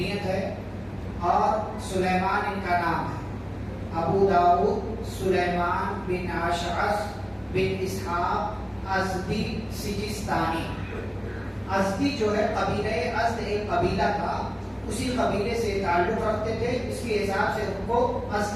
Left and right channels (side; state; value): both; identical; correlation 1.00